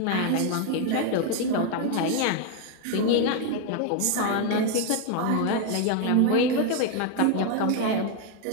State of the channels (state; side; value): different; both; correlation 0.01